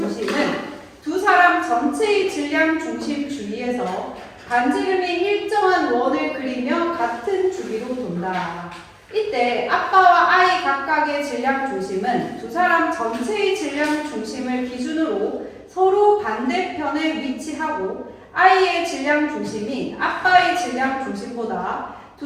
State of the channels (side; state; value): both; identical; correlation 1.00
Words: 두 사람 전체의 질량 중심 주위에서 반지름이 일정한 원을 그리며 같은 주기로 돈다. 이때 아빠와 아이 각각의 질량 중심은 두 사람 전체의 질량 중심을 기준으로 서로 반대편에 위치하고 아이의 질량 중심이 아빠의 질량 중심보다